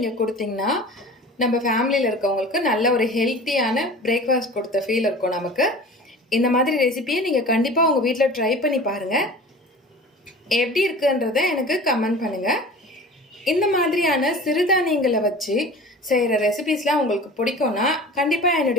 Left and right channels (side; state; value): both; normal; correlation 0.39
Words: கொடுத்தீங்கன்னா நம்ம ஃபேமிலியில் இருக்கவங்களுக்கு நல்ல ஒரு ஹெல்த்தியான பிரேக்ஃபாஸ்ட் கொடுத்த ஃபீல் இருக்கும் நமக்கு. இந்த மாதிரி ரெசிபியை நீங்கள் கண்டிப்பாக உங்கள் வீட்டில் ட்ரை பண்ணி பாருங்கள். எப்படி இருக்குன்றதை எனக்கு கமெண்ட் பண்ணுங்கள். இந்த மாதிரியான சிறுதானியங்களை வச்சு செய்கிற ரெசிபிஸ்லாம் உங்களுக்கு பிடிக்கும்னா கண்டிப்பாக